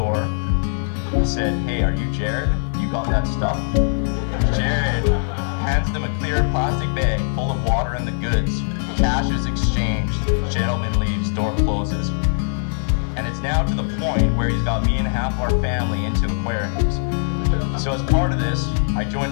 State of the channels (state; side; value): silent; right; digital silence